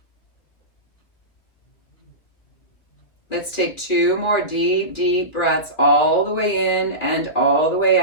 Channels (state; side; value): late; right; 2.6 ms